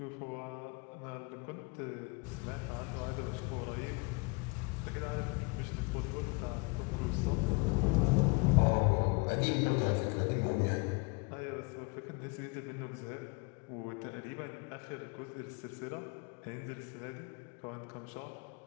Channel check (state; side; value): quieter; right; 29.4 dB